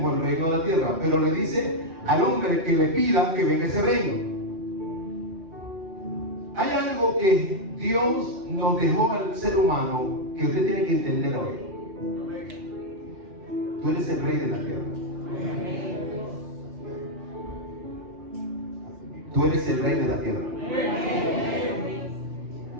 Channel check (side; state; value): left; late; 5.8 ms